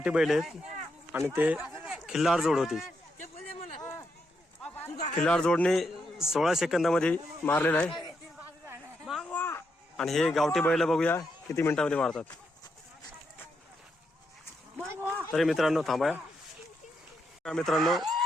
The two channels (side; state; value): both; normal; correlation 0.81